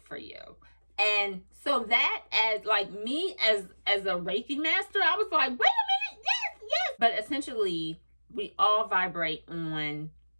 you." And so that, as like me as a Reiki master, I was like, wait a minute, yes. But essentially, we all vibrate on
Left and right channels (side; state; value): both; inverted; correlation -1.00